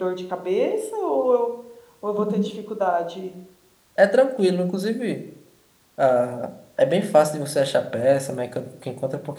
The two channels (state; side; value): identical; both; correlation 1.00